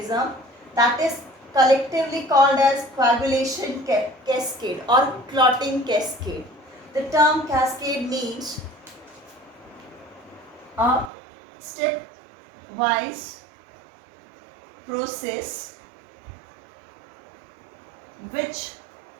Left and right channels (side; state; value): left; drops out; at 11.1 s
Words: that is collectively called as coagulation cascade or clotting cascade. The term cascade means a step-wise process which